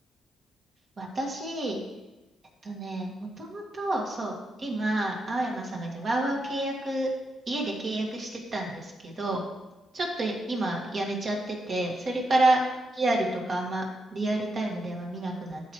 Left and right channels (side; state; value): both; normal; correlation 0.84